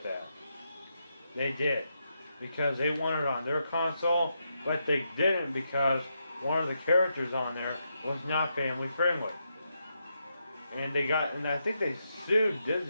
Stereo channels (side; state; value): both; inverted; correlation -0.83